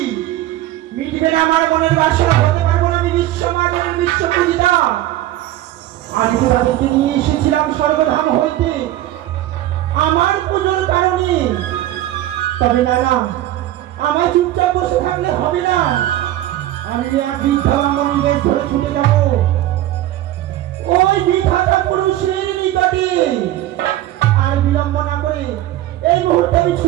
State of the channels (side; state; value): left; quieter; 14.3 dB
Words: মিটবে না আমার মনের বাসনা, হতে পারবো না আমি বিশ্বমানের বিশ্বপূজিতা। আমি তো তাদেরকে নিয়ে এসেছিলাম স্বর্গধাম হইতে আমার পুজোর কারণে। তবে না না, আমার চুপচাপ বসে থাকলে হবে না, আমি এক বৃদ্ধা ব্রাহ্মণী বেশ ধরে ছুটে যাব ওই বিধাতা পুরুষের নিকটে। আর বিলম্ব না করে এই মুহূর্তে আমি